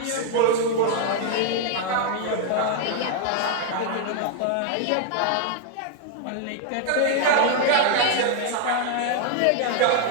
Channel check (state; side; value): different; both; correlation 0.00